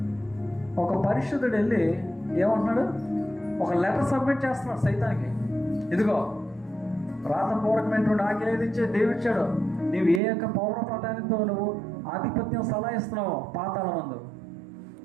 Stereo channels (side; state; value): left; drops out; at 10.2 s